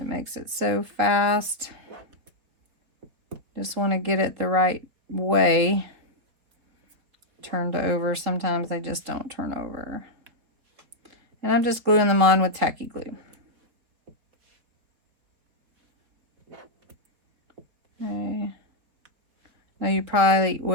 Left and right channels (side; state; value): left; late; 4.4 ms